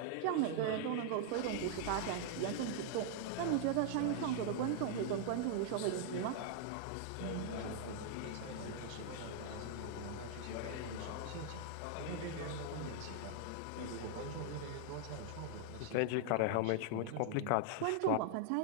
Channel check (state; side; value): different; both; correlation -0.01